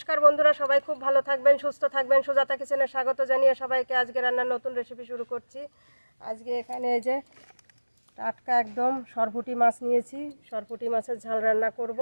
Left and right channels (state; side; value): inverted; both; correlation -1.00